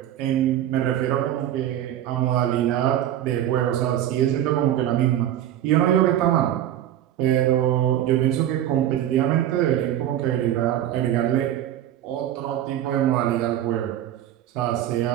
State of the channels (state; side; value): quieter; left; 11.7 dB